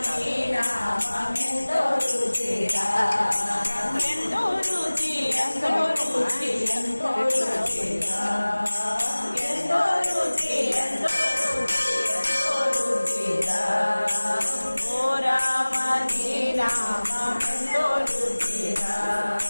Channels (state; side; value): inverted; both; correlation -1.00